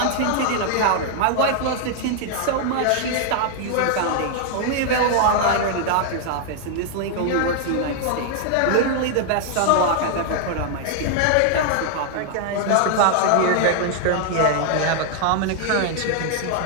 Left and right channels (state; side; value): different; both; correlation 0.00